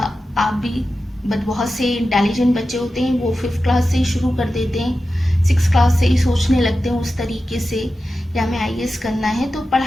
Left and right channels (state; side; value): normal; both; correlation 0.92